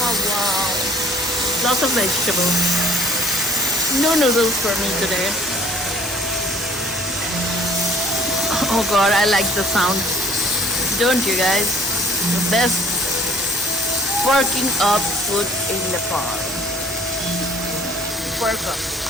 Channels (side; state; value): both; normal; correlation 0.58